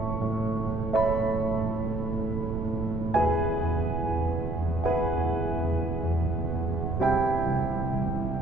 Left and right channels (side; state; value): right; noise; rumble, 3 dB below the sound